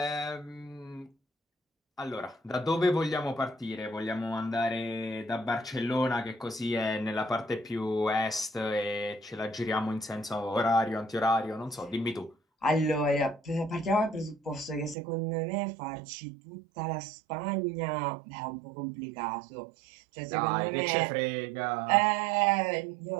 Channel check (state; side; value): drops out; left; at 15.0 s